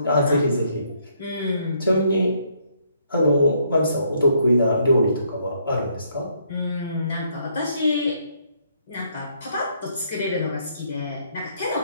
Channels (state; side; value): inverted; both; correlation -0.70